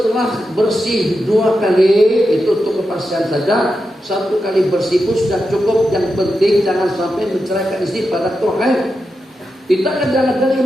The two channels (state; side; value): normal; both; correlation 0.88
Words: bersih 2 kali, itu untuk kepastian saja. 1 kali bersih pun sudah cukup. Yang penting jangan sampai menceraikan istri pada Tuhan. Kita kadang-kadang